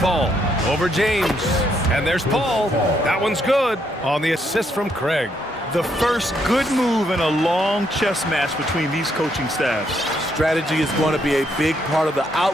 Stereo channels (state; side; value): normal; both; correlation 0.74